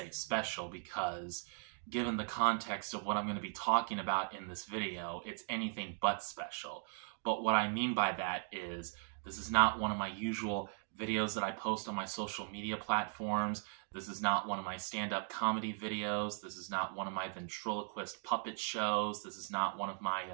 special because given the context of what I'm going to be talking about in this video, it's anything but special. But what I mean by that is this is not one of my usual videos that I post on my social media platforms. This is not one of my stand-up comedy videos. This is not one of my ventriloquist puppet shows. This is not one of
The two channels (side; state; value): left; silent; 52 dB below the other